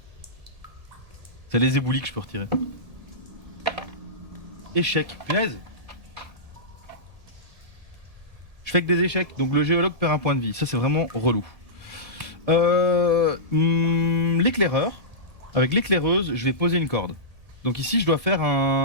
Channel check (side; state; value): left; late; 1.7 ms